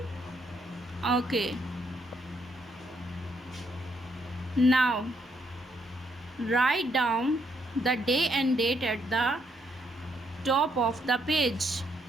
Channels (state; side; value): normal; both; correlation 0.74